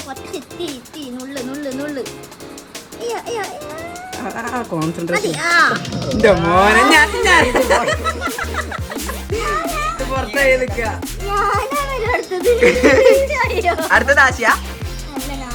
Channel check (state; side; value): identical; both; correlation 1.00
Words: കോൺസെൻട്രേഷൻ മോനെ ഞാൻ പുറത്തായി നിൽക്കുക. അടുത്തത് ആശയ